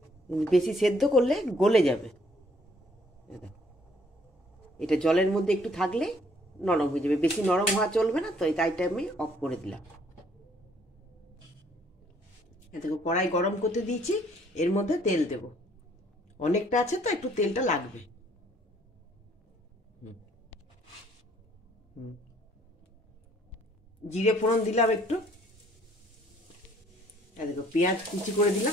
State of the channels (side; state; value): both; normal; correlation 0.62